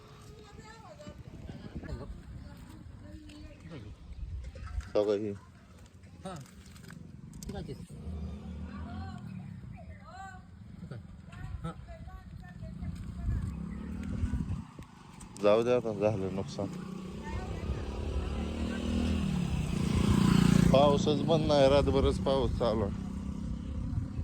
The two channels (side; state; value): both; identical; correlation 1.00